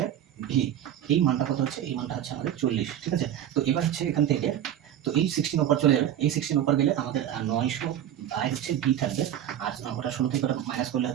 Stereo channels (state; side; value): quieter; left; 10.9 dB